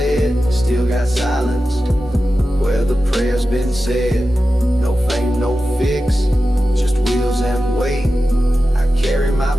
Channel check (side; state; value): both; normal; correlation 0.93